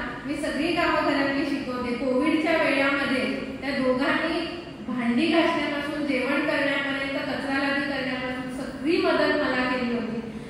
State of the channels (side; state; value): both; identical; correlation 1.00